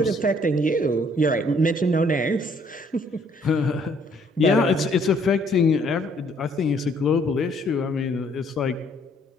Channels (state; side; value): normal; both; correlation 0.64